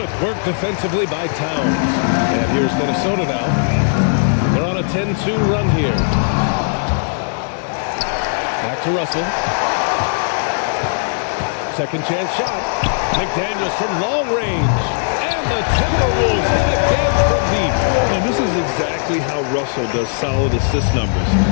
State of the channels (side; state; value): right; silent; digital silence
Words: work defensively by Towns. And here's Minnesota now. They're on a 10-2 run here. Back to Russell. Second chance shot. McDaniels from long range. And the Timberwolves hit again from deep. And this is exactly how Russell does solid assist numbers.